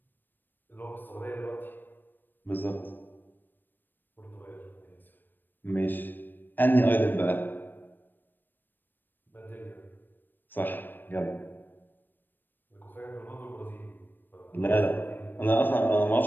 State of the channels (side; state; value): right; late; 0.093 ms